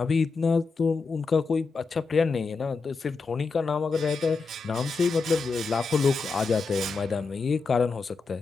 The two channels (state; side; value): quieter; right; 4.4 dB